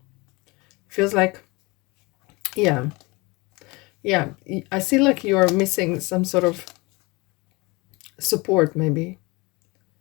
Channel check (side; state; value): right; quieter; 25.2 dB